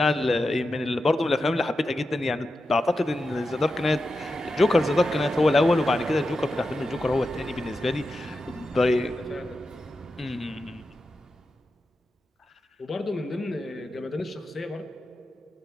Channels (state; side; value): normal; both; correlation 0.90